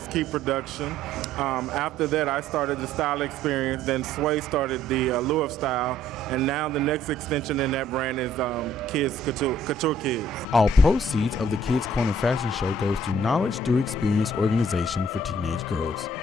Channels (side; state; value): both; normal; correlation 0.60